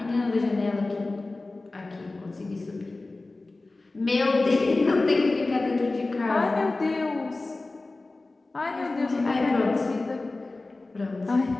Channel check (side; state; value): right; quieter; 3.2 dB